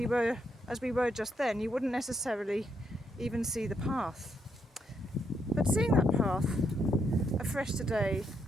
were just then, you wouldn't necessarily even see the path. But seeing that path afresh today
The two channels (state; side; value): normal; both; correlation 0.77